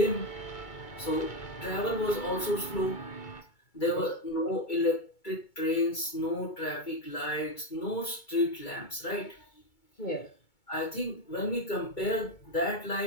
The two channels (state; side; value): late; right; 2.2 ms